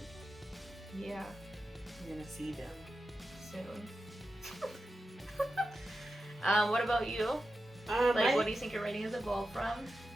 Yeah. You're gonna see them. Soon. What about you? What do you think your writing has evolved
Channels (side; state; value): both; normal; correlation 0.91